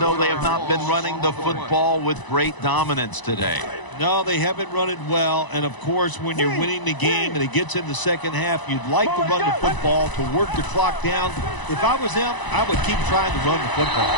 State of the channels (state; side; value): late; right; 1.0 ms